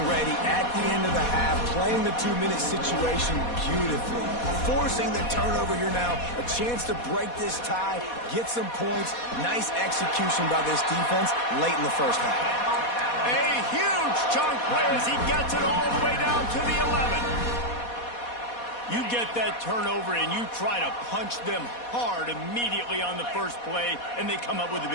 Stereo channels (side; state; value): right; late; 4.2 ms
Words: ready at the end of the half, playing the 2-minute situation beautifully, forcing the turnover here now, a chance to break this tie, get some points. Nice execution by this defense late in the 1st half. A huge chunk play as he gets it all the way down to the 11. You get that turnover and you try to punch them hard immediately on the 1st play, and they come up with a